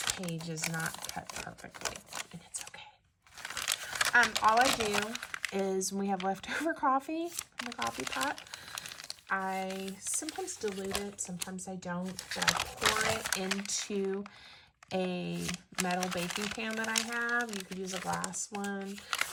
page is not cut perfectly, and it's okay. All I do is when we have leftover coffee in the coffee pot, I sometimes dilute it, sometimes I don't, but I pour it into a metal baking pan that I have. You could use a glass one.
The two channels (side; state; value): both; identical; correlation 1.00